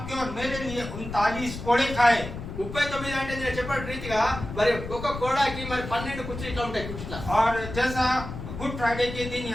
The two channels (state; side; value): noise; left; rumble, 9 dB below the sound